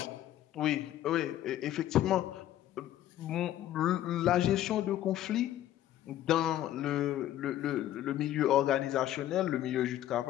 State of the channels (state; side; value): quieter; right; 12.8 dB